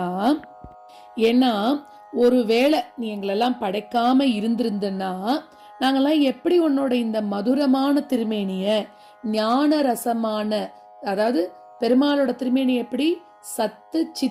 ஏன்னா ஒருவேளை நீ எங்களெல்லாம் படைக்காம இருந்திருந்தன்னா நாங்கெல்லாம் எப்படி உன்னோட இந்த மதுரமான திருமேனிய ஞான ரசமான, அதாவது பெருமாளோட திருமேனி எப்படி சத்து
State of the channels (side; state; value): both; identical; correlation 1.00